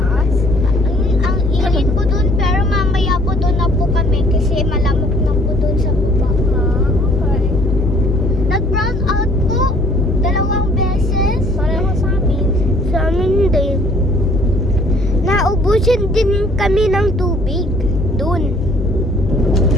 Ang init po doon, pero mamaya po doon na po kami kasi malamok na po doon sa baba. Okay. Nag-brown out po, 2 beses. Pareho sa amin. sa amin din. Naubusan din kami ng tubig. Doon.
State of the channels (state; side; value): normal; both; correlation 0.58